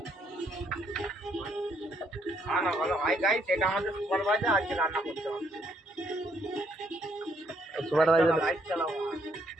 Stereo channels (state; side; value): normal; both; correlation 0.71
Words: ভালো ভাই গাই, সেটা আমাদের সুপারভাইজার আজকে রান্না করতে হবে। সুপারভাইজার লাইট চালাও।